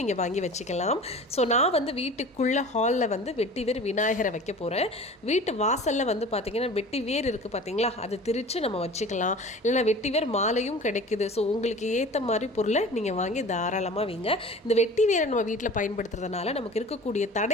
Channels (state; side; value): normal; both; correlation 0.40